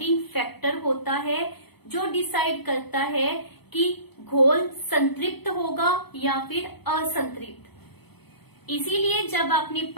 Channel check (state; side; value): late; right; 0.98 ms